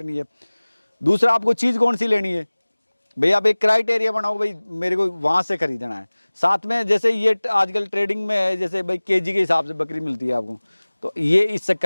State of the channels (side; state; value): both; inverted; correlation -1.00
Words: है, दूसरा आपको चीज़ कौन सी लेनी है। भाई, आप एक क्राइटेरिया बनाओ, भाई मेरे को वहाँ से खरीदना है। साथ में जैसे ये आजकल ट्रेडिंग में है, जैसे भाई केजी के हिसाब से बकरी मिलती है आपको, तो ये इस